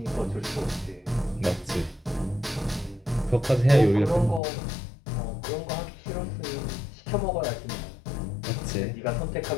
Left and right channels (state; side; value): drops out; right; at 4.4 s